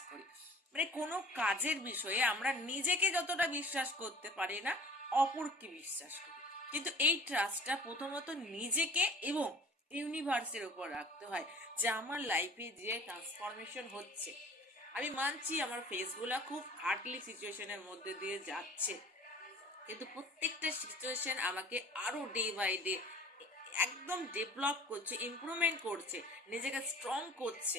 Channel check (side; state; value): both; normal; correlation 0.46